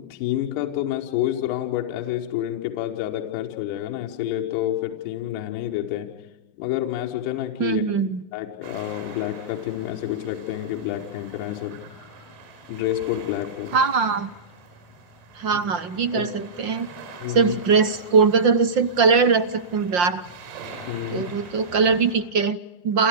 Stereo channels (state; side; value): late; left; 5.7 ms